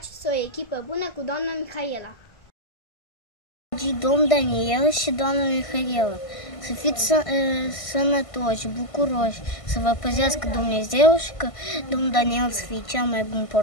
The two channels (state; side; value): late; right; 1.5 ms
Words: o echipă bună cu doamna Mihaela. Domn Daniel și doamna Mihaela, să fiți sănătoși, bucuroși, să vă păzească Dumnezeu și că domnul Daniel să fie cel mai bun